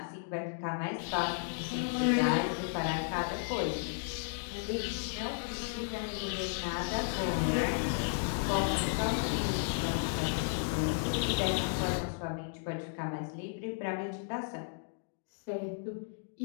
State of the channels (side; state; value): right; silent; digital silence